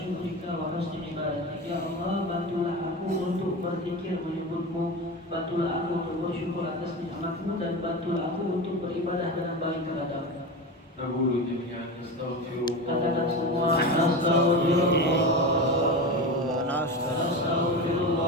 wa husni ibadatik. Ya Allah, bantulah aku untuk berzikir menyebutmu, bantulah aku untuk bersyukur atas nikmatmu, dan bantulah aku untuk beribadah dengan baik kepadamu. نقول جميعا نستغفر الله. Katakan semua Astaghfirullah, Astaghfirullah.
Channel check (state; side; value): normal; both; correlation 0.24